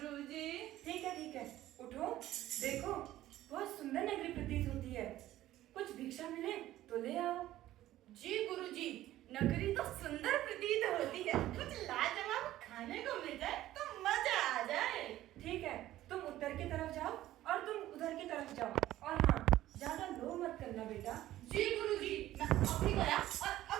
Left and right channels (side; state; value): left; quieter; 14.5 dB